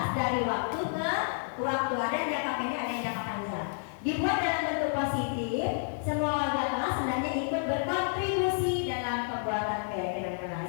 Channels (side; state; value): right; silent; digital silence